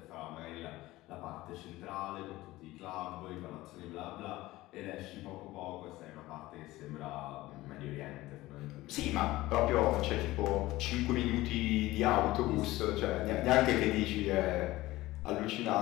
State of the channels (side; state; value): right; quieter; 18.0 dB